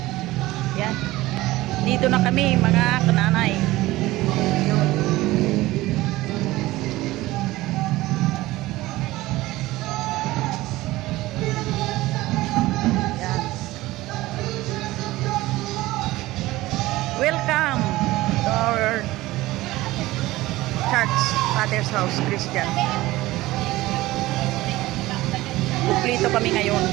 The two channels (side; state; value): left; quieter; 18.1 dB